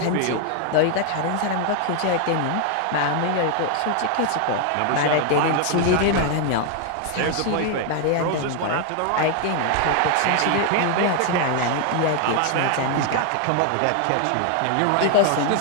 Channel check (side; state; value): both; different; correlation 0.00